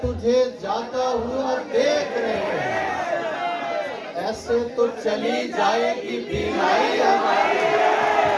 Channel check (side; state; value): both; identical; correlation 1.00